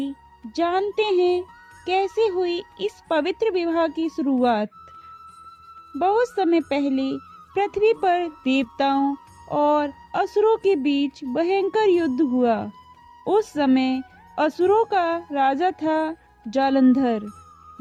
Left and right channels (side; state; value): both; identical; correlation 1.00